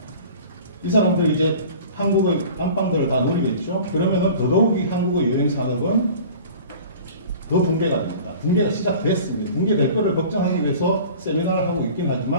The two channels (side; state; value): both; inverted; correlation -0.43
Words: 이 사람들 이제 한국의 안방들을 다 노리겠죠. 그러면은 더더욱이 한국의 여행 산업은 더 붕괴가 됩니다. 붕괴가 시작됐습니다. 붕괴될 거를 걱정하기 위해서 세미나를 하고 있긴